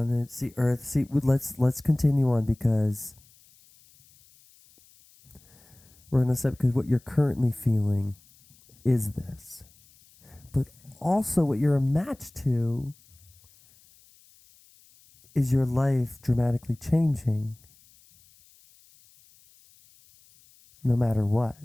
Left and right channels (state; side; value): noise; left; hiss, 29 dB below the sound